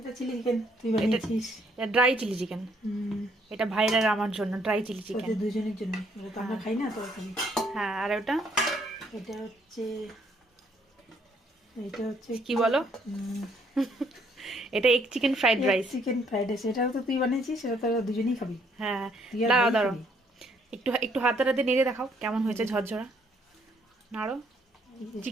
চিলি চিকেন তুই এটা বানিয়েছিস? Dry chilli chicken. হুম। এটা ভাইরা আর আমার জন্য ড্রাই চিলি চিকেন। ওদের দুজনের জন্য, ওটা তো আমরা হ্যাঁ খাই না তো খালি। হ্যাঁ, আর ওটা এটা হচ্ছে, এটা হচ্ছে কি বলো? এটা egg chicken fried rice. Chicken fried rice. এটাও তো তুই বানিয়েছিস, সেটা তো আমরা দুজনেই খাবি। হ্যাঁ, তুই আর দাঁড়াও ভাই দাঁড়াও, খাবি। একটু একটু হাতে হাতে নেড়ে দেখাও কেমন হয়েছে, ঝরঝরা। নাড়ো।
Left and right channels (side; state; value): both; normal; correlation 0.67